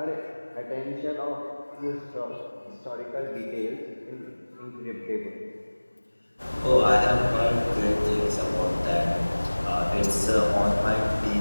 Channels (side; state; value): both; inverted; correlation -1.00